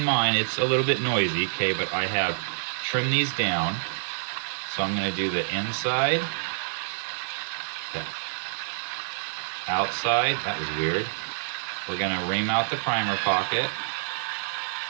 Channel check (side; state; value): left; silent; digital silence